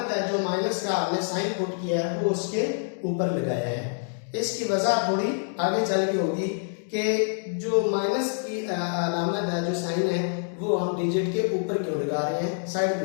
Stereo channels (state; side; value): silent; right; digital silence